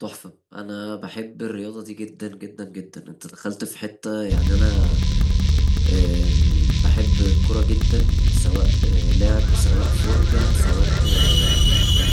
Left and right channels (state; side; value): identical; both; correlation 1.00